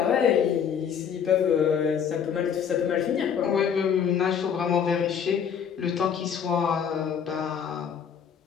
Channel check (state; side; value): quieter; right; 7.6 dB